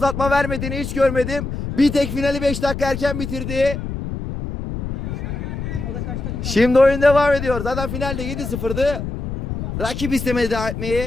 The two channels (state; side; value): noise; left; rumble, 5 dB below the sound